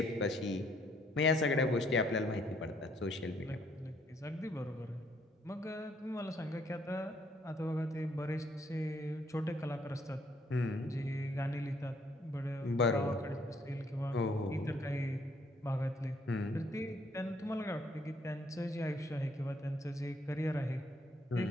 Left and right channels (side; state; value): both; normal; correlation 0.67